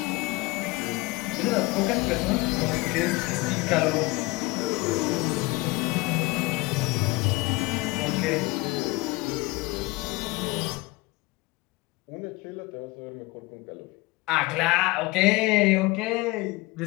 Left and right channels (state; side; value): quieter; right; 22.2 dB